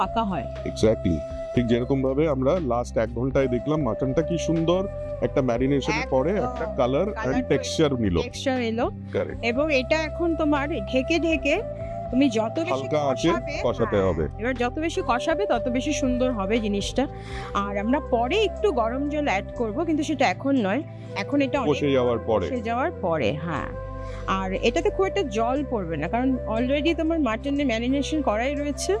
হয়। এক্স্যাক্টলি। ঠিক যেরকম ভাবে আমরা লাস্ট 1 ঘন্টায় দেখলাম মাটনটা কি সুন্দর একটা ম্যারিনেশনের একদম। পরে একটা কালার Colour এন্ড টেক্সচার নিল। টেক্সচার এলো, কারেক্ট। এবং এটা এখন তোমার ঢেকে ঢেকে তুমি যত বেশি হালকা আঁচে কষাতে হবে। এবার যত বেশি কষাবে তত বেশি সুন্দর হবে জিনিসটা। আর আমরা পরে একটু গরম জল অ্যাড করব, কিন্তু সেটা এখন নয়, এখন এটা কষে যাওয়ার পরে। হ্যাঁ। আর এটাতে খুব একটা জল পড়বে না, কারণ অলরেডি তোমার মাটনে ম্যারিনেশন করাই রয়েছে,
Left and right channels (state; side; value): identical; both; correlation 1.00